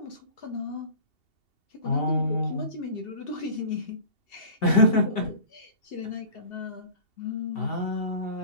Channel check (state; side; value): late; right; 2.7 ms